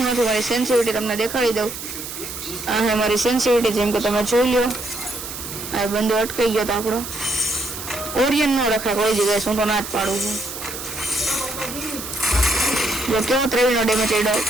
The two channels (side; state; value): right; noise; hiss, 9 dB below the sound